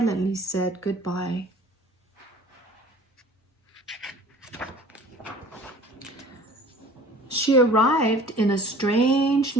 said goodbye. She arrived in a strange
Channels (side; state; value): both; normal; correlation 0.47